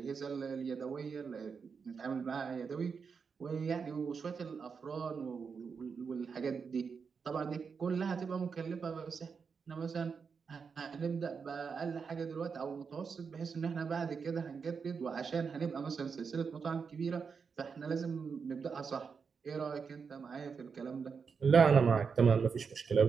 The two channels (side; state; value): left; quieter; 5.7 dB